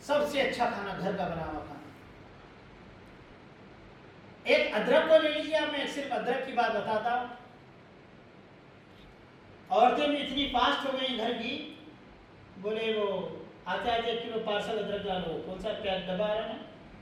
سب سے اچھا کھانا گھر کا بنا ہوا کھانا. ایک ادرک کو لے لیجیے آپ، میں صرف ادرک کی بات بتاتا ہوں. عورتیں بھی اتنی فاسٹ ہو گئی گھر کی، بولے وہ آتے آتے 1 کلو پارسل ادرک ڈالو. کون سا پیک ڈبا آ رہا ہے؟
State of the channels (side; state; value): both; identical; correlation 1.00